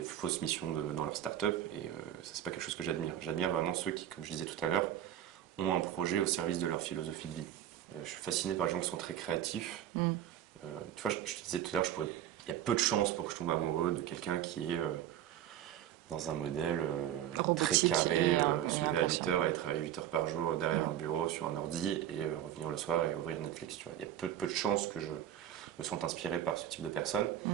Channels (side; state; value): left; quieter; 11.2 dB